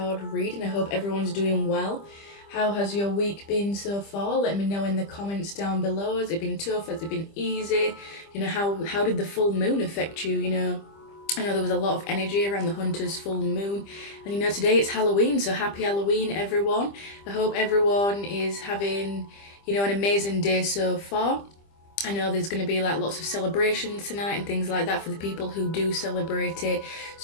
reading. I hope everyone's doing well. How has your week been so far? Let me know in the comments down below. Has it been tough? Has it been easy? How did the full moon affect you? I know there was a lot of energy around the Hunter's full moon. And today it's Halloween, so happy Halloween everyone. I hope everyone is having, an amazing day so far. I know there's going to be like lots of celebrations tonight and things like that for the people who do celebrate it.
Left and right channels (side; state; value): right; late; 25 ms